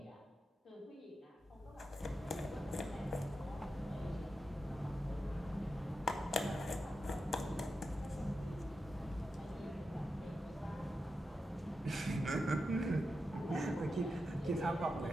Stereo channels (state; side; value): normal; both; correlation 0.89